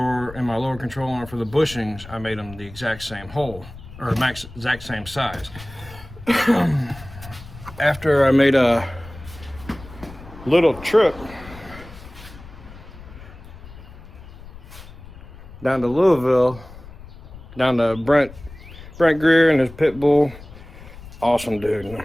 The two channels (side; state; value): left; noise; rumble, 17 dB below the sound